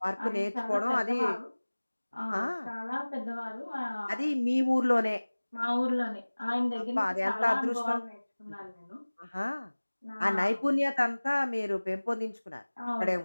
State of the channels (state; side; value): inverted; both; correlation -1.00